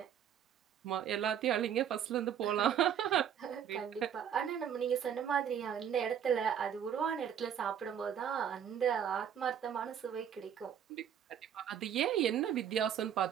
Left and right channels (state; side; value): quieter; left; 8.9 dB